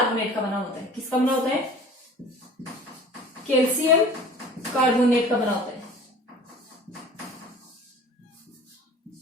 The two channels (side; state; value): both; normal; correlation 0.44